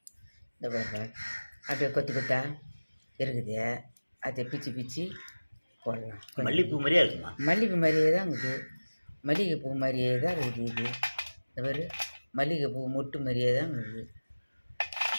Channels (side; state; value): both; inverted; correlation -1.00